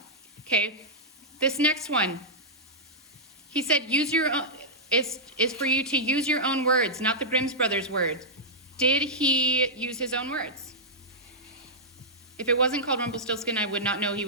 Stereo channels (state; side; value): normal; both; correlation -0.10